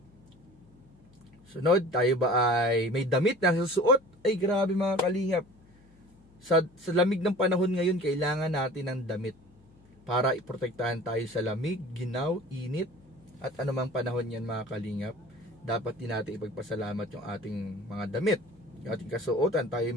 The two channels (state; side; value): noise; left; hum, 28 dB below the sound